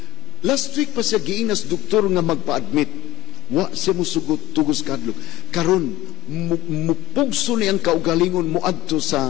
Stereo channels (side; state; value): right; quieter; 17.8 dB